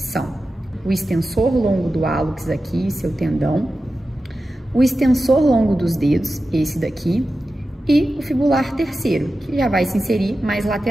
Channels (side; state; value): both; normal; correlation 0.93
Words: são o extensor longo do hálux aqui, seu tendão, o extensor longo dos dedos, esse daqui, e o fibular terceiro, que já vai se inserir mais